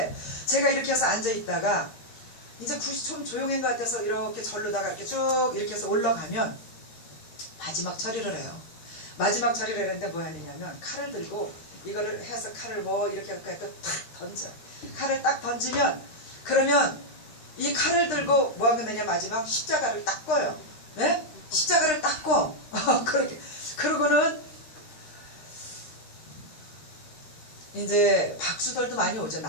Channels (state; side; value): late; right; 13 ms